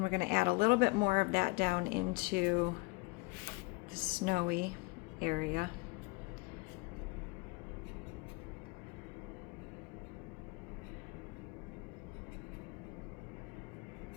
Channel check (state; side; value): quieter; right; 25.9 dB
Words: we're going to add a little bit more of that down into the snowy area.